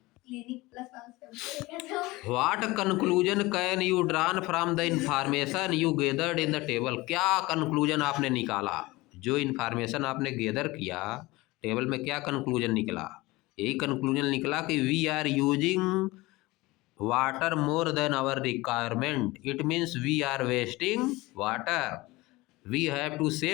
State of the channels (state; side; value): quieter; right; 20.9 dB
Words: प्लस वाला shampoo what conclusion can you drawn from the information you gathered in the table. क्या कंक्लूजन आपने निकाला, जो इंफॉर्मेशन आपने गेदर किया टेबल में, क्या कंक्लूजन निकला। यही कंक्लूजन निकला कि we are using water more than our requirement, it means we are wasting water, we have to